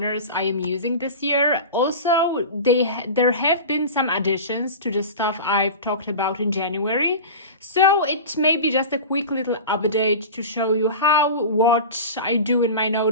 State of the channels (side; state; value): both; inverted; correlation -0.30